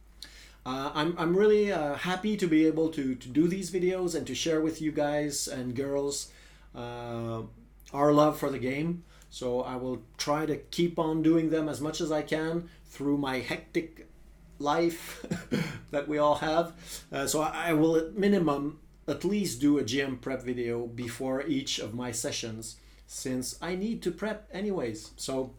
I'm really happy to be able to do these videos and to share with you guys and girls our love for the game. So I will try to keep on doing them as much as I can through my hectic life that we all have. So I will at minimum at least do a GM prep video before each of my sessions, since I need to prep anyways. So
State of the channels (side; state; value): both; identical; correlation 1.00